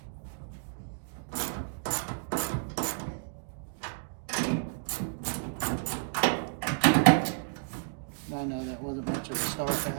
I know that wasn't much of a start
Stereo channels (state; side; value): silent; left; digital silence